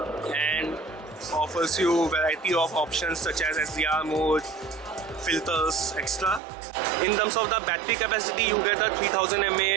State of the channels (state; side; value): drops out; left; at 6.4 s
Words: and offers you a variety of options such as SDR mode, filters, extra. In terms of the battery capacity, you get a 3000